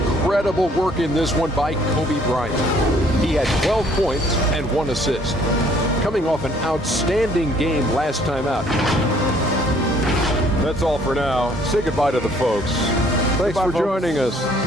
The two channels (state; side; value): normal; both; correlation 0.60